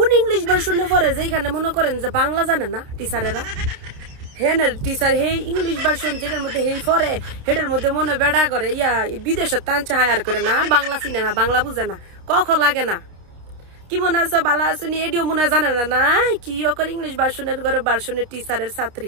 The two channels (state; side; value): late; left; 29 ms